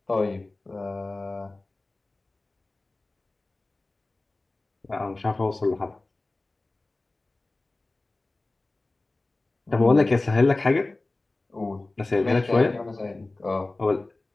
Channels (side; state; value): right; quieter; 3.1 dB